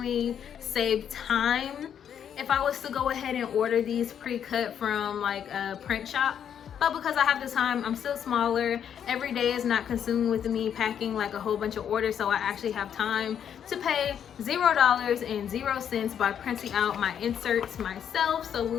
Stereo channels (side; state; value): right; quieter; 8.7 dB